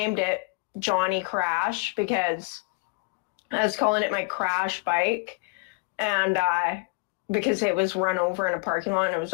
it Johnny Crash because I was calling it my crash bike, and because it was run over in a parking lot, and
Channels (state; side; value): quieter; right; 30.0 dB